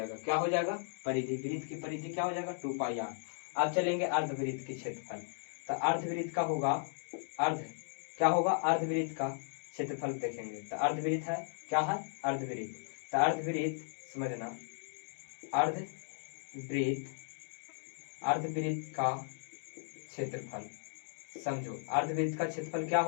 क्या हो जाएगा, परिधि, वृत्त की परिधि क्या हो जाएगा 2πr। अब चलेंगे अर्धवृत्त के क्षेत्रफल। तो अर्धवृत्त का होगा अर्धवृत्त का क्षेत्रफल देखेंगे। तो अर्धवृत्त है क्या है, अर्धवृत्त। तो अर्धवृत्त समझना, अर्धवृत्त का क्षेत्रफल समझो। अर्धवृत्त का क्षेत्रफल क्या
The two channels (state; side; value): silent; right; digital silence